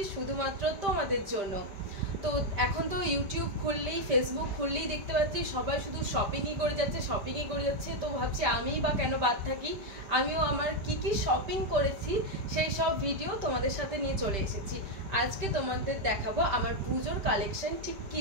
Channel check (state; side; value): late; left; 5.1 ms